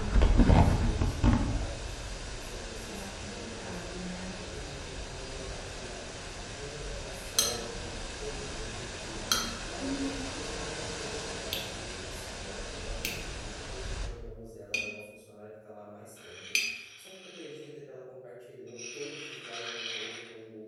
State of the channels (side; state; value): both; identical; correlation 1.00